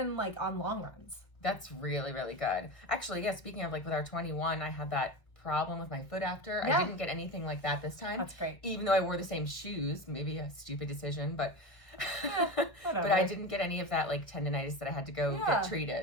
on long runs. That's really, really good. Actually, yeah, speaking of with our 21, I had that problem with my foot after. Yeah. I didn't get anything like that this time. That's great. Even though I wore the same shoes, maybe a stupid decision, but but I didn't get any of that tendonitis that I had to go get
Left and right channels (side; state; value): right; late; 1.6 ms